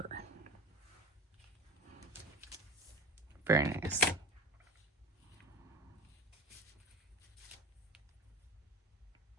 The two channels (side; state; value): both; normal; correlation 0.33